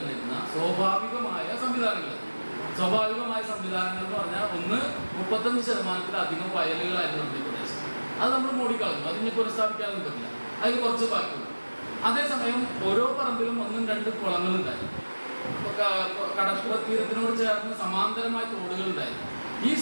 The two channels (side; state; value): both; inverted; correlation -1.00